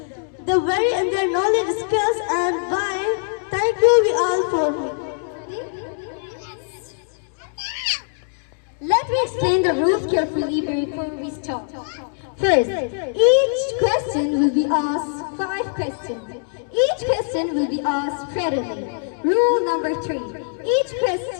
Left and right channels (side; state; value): right; silent; digital silence